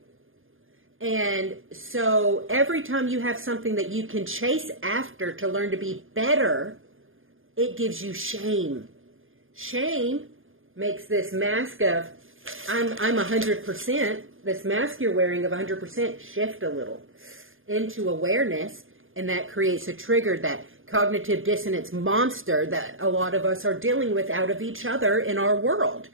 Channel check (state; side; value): late; left; 0.59 ms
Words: And so every time you have something that you can chase after to learn to be better, it gives you shame. Shame makes this mask of, I'm 100%, this mask you're wearing of 100% shift a little into awareness, and that creates a trigger, that cognitive dissonance monster that a lot of us are dealing with out of each other in our world.